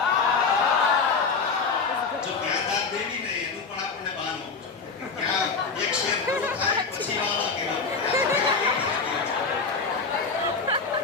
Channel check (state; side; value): quieter; right; 4.7 dB